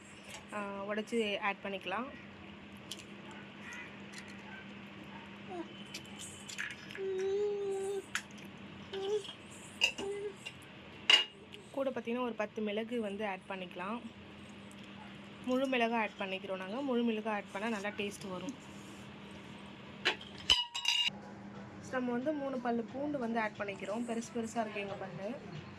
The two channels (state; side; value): identical; both; correlation 1.00